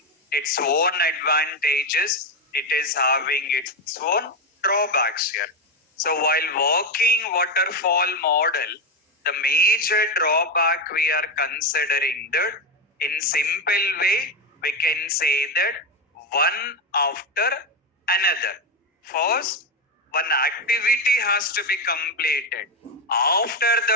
its own advantages. It is having its own drawbacks here. So while working waterfall model, the major drawback we are considering that in simple way, we can say that one after another. First, one activity has to be completed. After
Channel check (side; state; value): both; normal; correlation 0.11